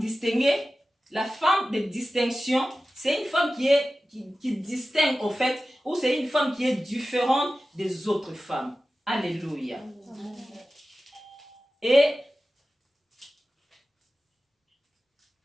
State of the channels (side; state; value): both; normal; correlation 0.95